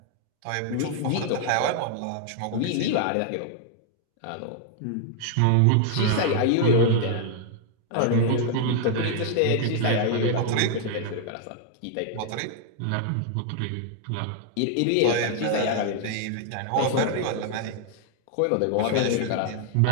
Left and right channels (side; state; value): both; different; correlation 0.00